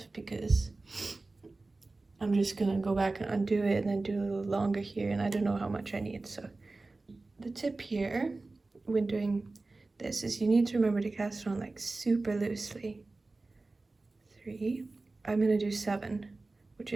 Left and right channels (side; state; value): left; quieter; 3.4 dB